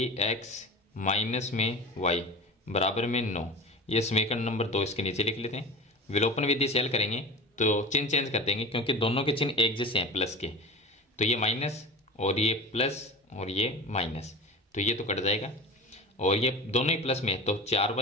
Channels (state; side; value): normal; both; correlation 0.33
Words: माइनस में y बराबर में 9। ये समीकरण नंबर 2 इसके नीचे लिख लेते हैं। विलोपन विधि से हल करेंगे तो चिन्ह चेंज कर देंगे क्योंकि दोनों के चिन्ह एक जैसे हैं प्लस के। तो ये माइनस और ये प्लस और ये माइनस, तो ये तो कट जाएगा। और ये दोनों ही प्लस में, तो